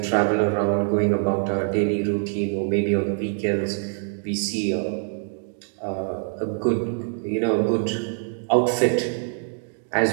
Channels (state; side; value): silent; left; 62 dB below the other